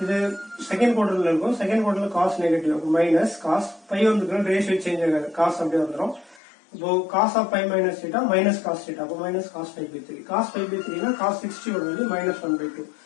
இது செகண்ட் குவார்டர்ல இருக்கும். செகண்ட் குவார்டர்ல cos நெகட்டிவ் இருக்கும். மைனஸ் cos pi வந்துருக்கு ரேஷியோ சேஞ்ச் ஆகாது. cos அப்படியே வந்துரும். இப்போ cos of pi minus theta minus cos theta. அப்ப minus cos pi by 3. cos pi by 3 னா cos 60 ஓட value minus 1 by 2.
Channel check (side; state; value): right; drops out; at 6.4 s